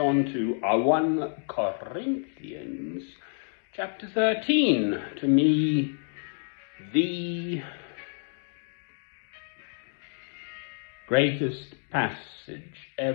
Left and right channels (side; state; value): right; silent; 57 dB below the other